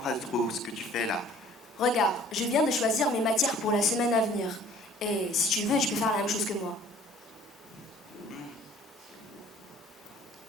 trop ce que tu fais là. Regarde, je viens de choisir mes matières pour la semaine à venir. Et si tu veux, tu peux faire la même chose que moi.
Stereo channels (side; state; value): both; normal; correlation 0.53